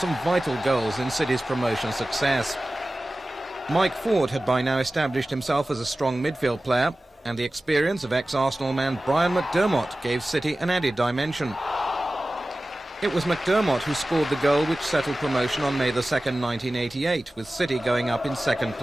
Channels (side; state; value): both; normal; correlation 0.96